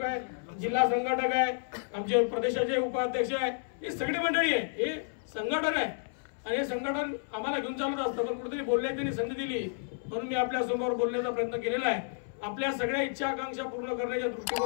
आहे, जिल्हा संघटक आहे, आमचे प्रदेशाचे उपाध्यक्ष आहे, हे सगळी मंडळी आहे, हे संघटन आहे। आणि हे संघटन आम्हाला घेऊन चालत असतं, पण कुठेतरी बोलण्याची त्यांनी संधी दिली म्हणून मी आपल्या समोर बोलण्याचा प्रयत्न केलेला आहे। आपल्या सगळ्या इच्छा आकांक्षा पूर्ण करण्याच्या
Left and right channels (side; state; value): right; silent; 57 dB below the other